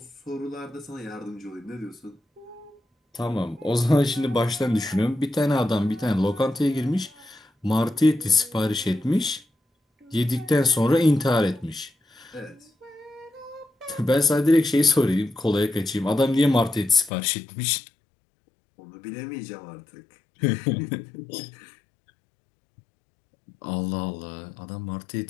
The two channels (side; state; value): right; drops out; at 17.1 s